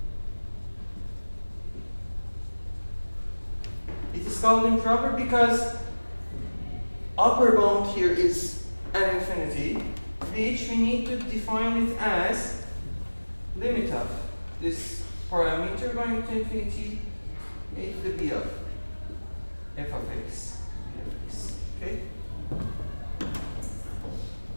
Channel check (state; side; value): inverted; both; correlation -1.00